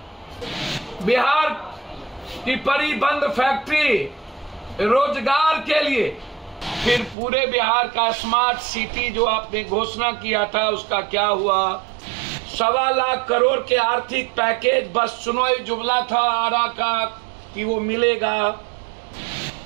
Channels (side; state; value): left; drops out; at 7.2 s